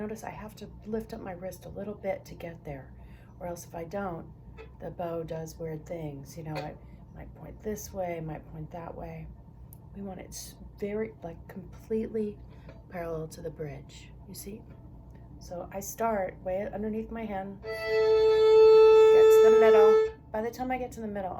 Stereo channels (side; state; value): both; identical; correlation 1.00